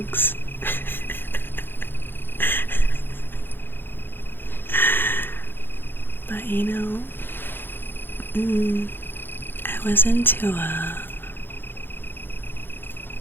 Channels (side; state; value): right; late; 0.10 ms